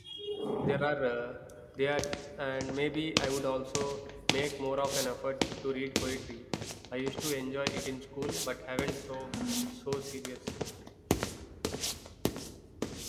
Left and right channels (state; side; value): identical; both; correlation 1.00